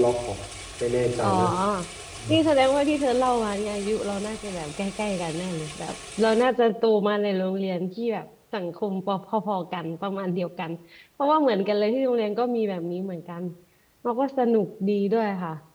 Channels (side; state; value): both; identical; correlation 1.00